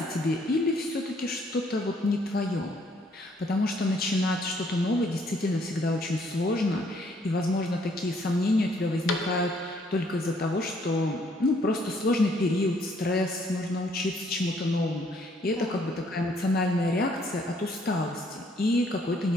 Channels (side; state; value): both; normal; correlation 0.66